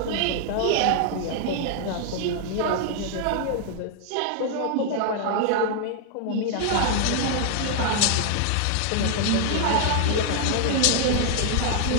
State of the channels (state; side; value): different; both; correlation 0.00